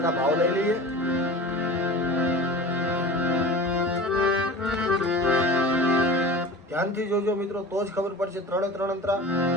આ ભાવ લઈ લઈએ. ધ્યાનથી જોજો મિત્રો, તો જ ખબર પડશે. ત્રણે ત્રણ અંતરા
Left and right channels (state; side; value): normal; both; correlation 0.36